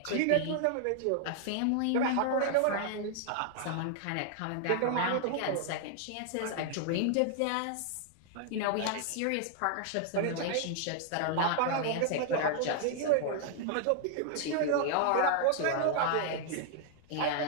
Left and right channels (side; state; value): both; different; correlation 0.00